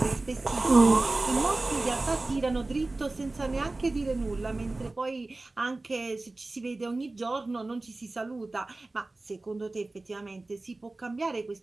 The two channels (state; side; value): quieter; left; 3.1 dB